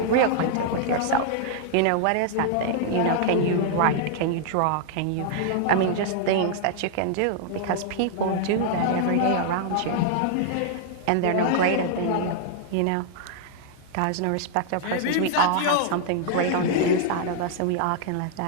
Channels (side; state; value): both; different; correlation -0.01